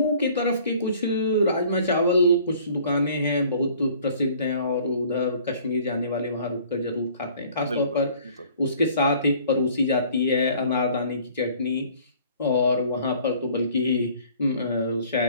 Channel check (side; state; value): both; inverted; correlation -0.53